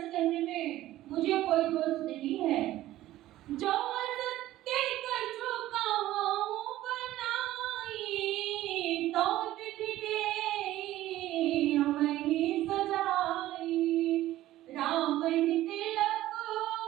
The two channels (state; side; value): quieter; left; 14.9 dB